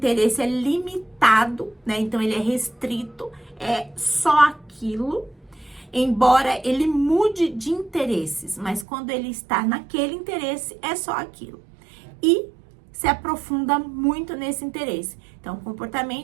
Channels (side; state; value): left; drops out; at 8.8 s